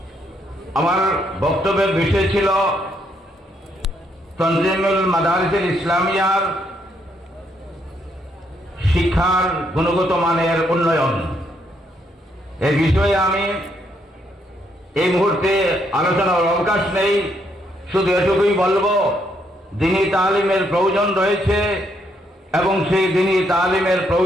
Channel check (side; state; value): both; normal; correlation 0.74